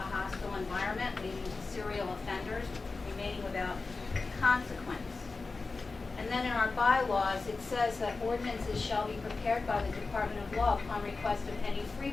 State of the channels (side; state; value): right; quieter; 3.9 dB